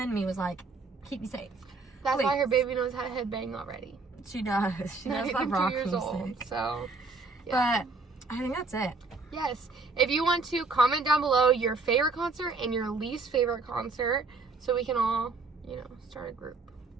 me was like, keep me safe. That's Please. why her baby knows how to headbang already. She does. She Not knows even that rock 2 years old. music. So, yeah. But I think that's it. Yes. If you want to, comment down below your favorite concert and your least favorite concert so we can all, you know, start a group.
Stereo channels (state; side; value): quieter; left; 3.9 dB